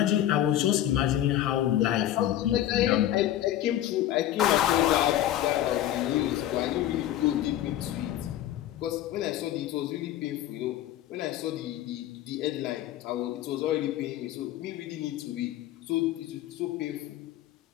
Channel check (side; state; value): right; quieter; 12.6 dB